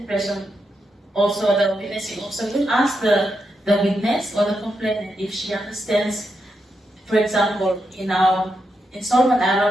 Also, the witnessing officer will ask the witness or the complainant if she understands. For example, in Solomon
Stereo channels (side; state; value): both; normal; correlation 0.84